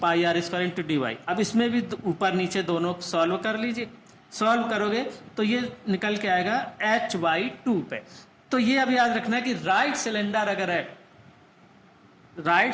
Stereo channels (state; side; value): identical; both; correlation 1.00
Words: R square into D Y. अब इसमें भी ऊपर नीचे दोनों सॉल्व कर लीजिए, सॉल्व करोगे तो ये निकल के आएगा h/2 पे। तो ये अब याद रखना है कि राइट सिलेंडर